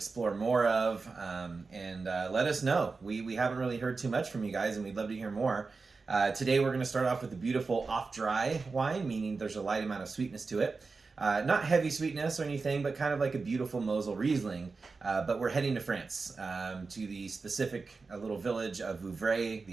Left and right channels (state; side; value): quieter; left; 4.3 dB